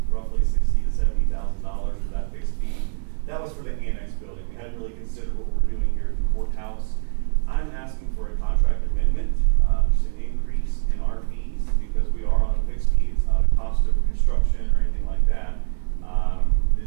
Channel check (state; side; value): silent; left; 61 dB below the other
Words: roughly $60,000 to $70,000 for that fixed fee. That was for the annex building. We hadn't really considered what we're doing here at the courthouse. I'm asking for a contract amendment, just an increase in our fees because we are on a fixed fee. It's not a cost of construction or anything like that.